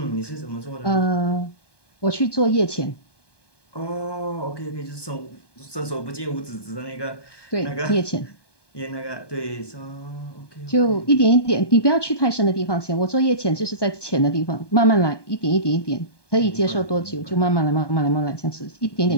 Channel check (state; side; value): late; right; 1.2 ms